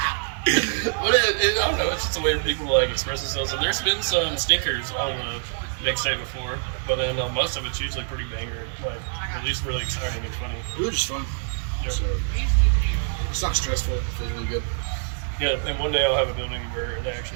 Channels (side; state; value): left; silent; digital silence